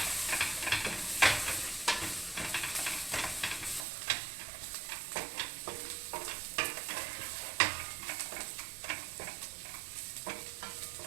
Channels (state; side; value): drops out; left; at 3.8 s